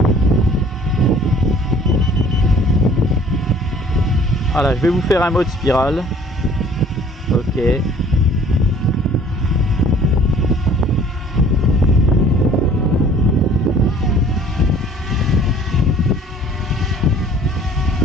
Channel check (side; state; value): both; normal; correlation 0.53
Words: Voilà, je vais vous faire un mode spirale. Ok.